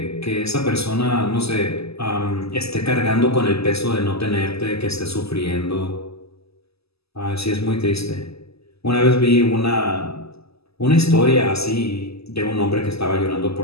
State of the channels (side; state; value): right; late; 0.78 ms